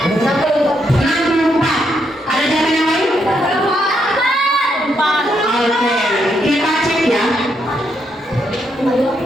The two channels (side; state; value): both; normal; correlation 0.78